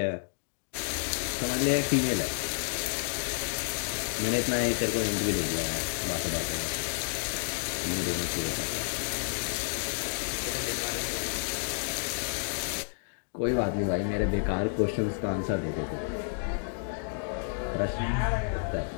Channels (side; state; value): right; silent; digital silence